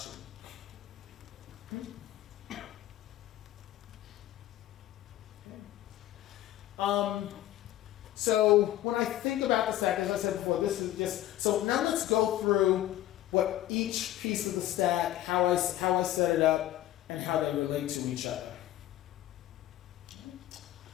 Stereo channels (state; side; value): quieter; right; 14.0 dB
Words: So when I think about the stack, as I said before, this is just, so now let's go through what each piece of the stack, how I set it up, and how they relate to each other.